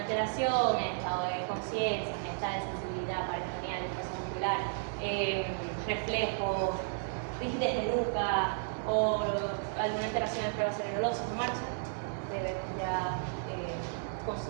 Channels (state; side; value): silent; left; digital silence